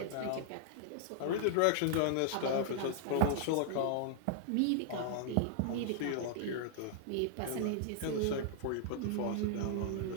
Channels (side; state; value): both; different; correlation -0.01